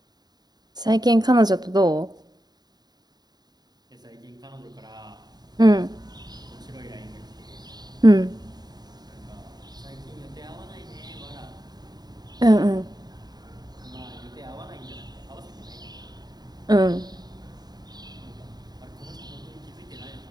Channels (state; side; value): late; left; 0.20 ms